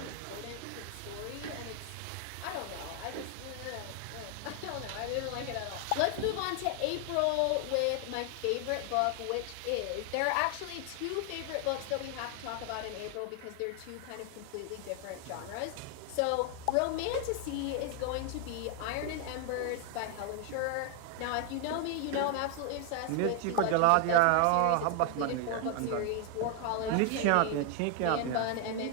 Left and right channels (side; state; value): both; different; correlation 0.00